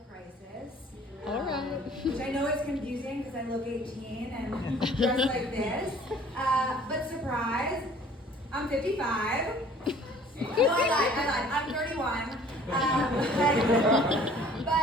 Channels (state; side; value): normal; both; correlation 0.52